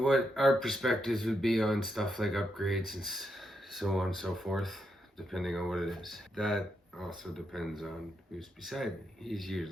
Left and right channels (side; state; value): both; normal; correlation 0.82